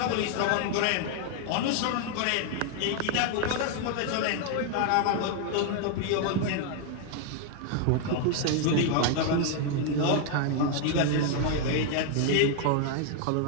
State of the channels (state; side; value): different; both; correlation 0.00